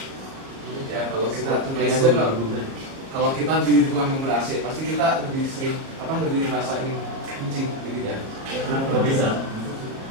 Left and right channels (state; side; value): late; left; 37 ms